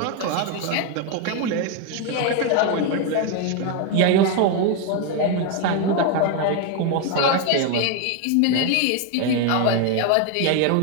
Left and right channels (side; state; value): both; different; correlation 0.01